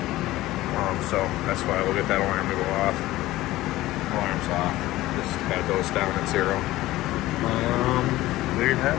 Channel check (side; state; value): right; quieter; 16.9 dB